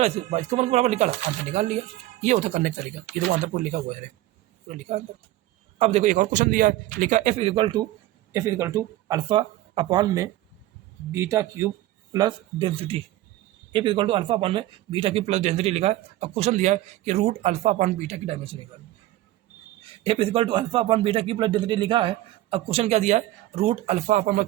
इसको वन बराबर निकाला, आंसर निकाल लिया। ये होता करने का तरीका, ये तो आंसर पूरा लिखा हुआ है, पूरा लिखा अंदर। अब देखो एक और क्वेश्चन दिया है, लिखा F equal to alpha upon में beta cube plus density, F equal to alpha upon में बीटा क्यूब प्लस डेंसिटी लिखा है। अब क्वेश्चन दिया है कि रूट अल्फा अपॉन बीटा की डायमेंशन निकालनी, F equal to alpha upon beta cube plus density लिखा है। अब क्वेश्चन क्या दिया है, रूट अल्फा अपॉन, मैं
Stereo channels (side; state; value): left; quieter; 15.5 dB